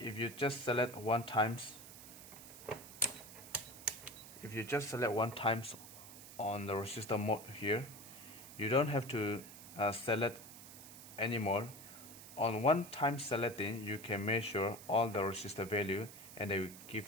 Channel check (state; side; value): noise; right; hiss, 15 dB below the sound